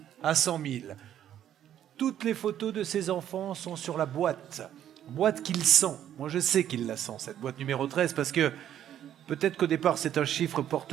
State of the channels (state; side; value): quieter; left; 10.7 dB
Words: à 100 000. Toutes les photos de ces enfants sont sur la boîte qu'il sent. Moi je sais qu'il la sent, cette boîte numéro 13, parce que peut-être qu'au départ c'est un chiffre